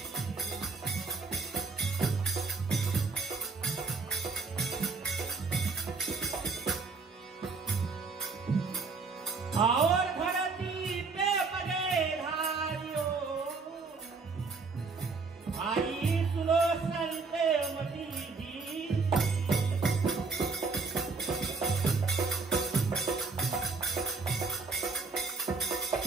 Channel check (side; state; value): left; quieter; 4.4 dB